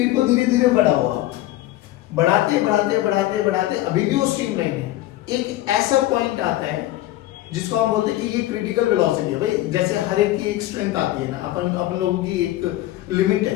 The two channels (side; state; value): right; quieter; 15.5 dB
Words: को धीरे धीरे बढ़ाओ, बढ़ाते बढ़ाते बढ़ाते बढ़ाते अभी भी वो स्ट्रीमलाइन है। एक ऐसा पॉइंट आता है जिसको हम बोलते हैं कि ये क्रिटिकल वेलोसिटी है। भाई जैसे हर एक की एक स्ट्रेंथ आती है ना, अपन लोगों की एक लिमिट है